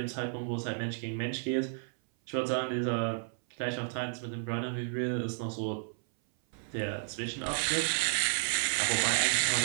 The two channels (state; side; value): silent; left; 56 dB below the other